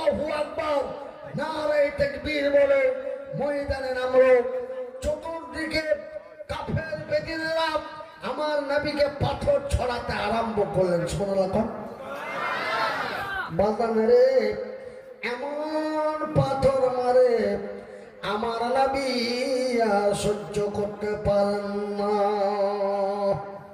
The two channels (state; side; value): identical; both; correlation 1.00